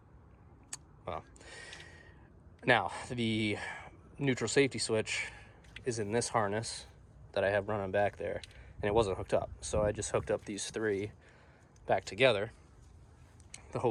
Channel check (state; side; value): identical; both; correlation 1.00